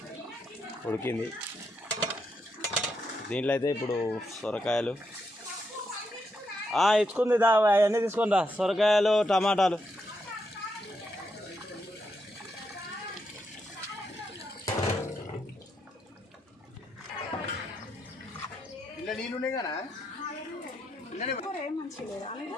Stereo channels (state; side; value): normal; both; correlation 0.81